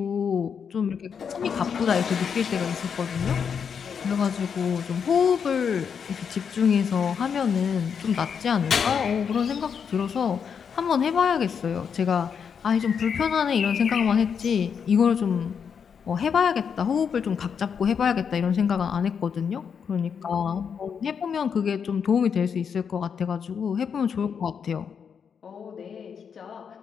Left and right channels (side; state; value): right; quieter; 6.9 dB